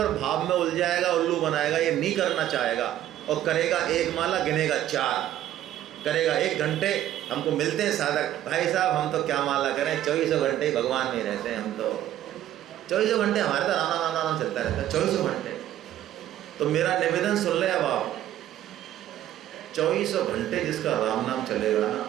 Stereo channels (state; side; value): quieter; left; 12.4 dB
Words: भाव में उलझाएगा, उल्लू बनाएगा, ये नहीं करना चाहेगा। और करेगा 1 माला, गिनेगा 4, करेगा 1 घंटे। हमको मिलते हैं साधक, भाई साहब हम तो क्या माला करें, 24 घंटे भगवान में रहते हैं हम तो। 24 घंटे हमारे तो राम राम राम चलता रहता है, 24 घंटे। तो मेरा निवेदन सुन ले अब आप, 24 घंटे जिसका राम नाम चलेगा ना,